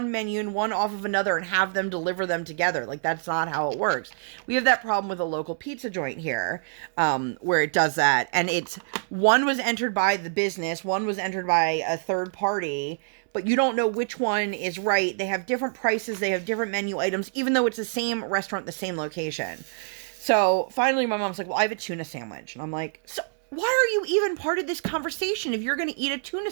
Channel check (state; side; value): silent; left; digital silence